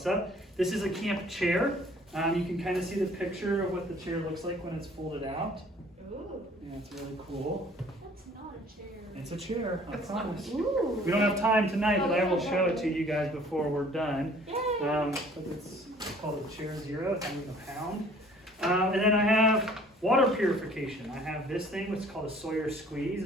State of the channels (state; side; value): normal; both; correlation 0.54